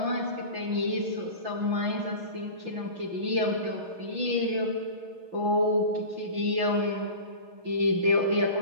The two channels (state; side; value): late; left; 6.3 ms